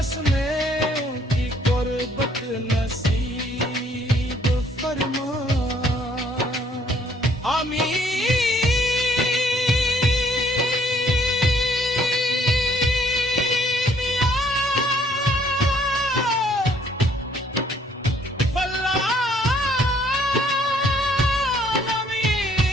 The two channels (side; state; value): both; normal; correlation 0.64